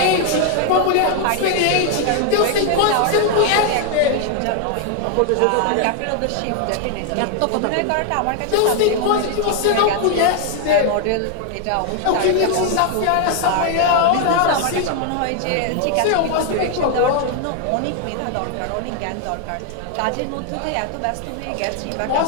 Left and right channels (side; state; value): both; different; correlation 0.00